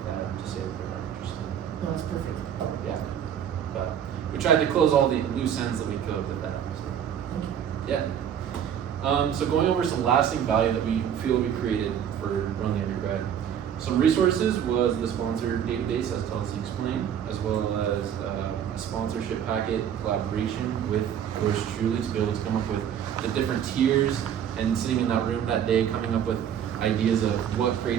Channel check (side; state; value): left; quieter; 9.1 dB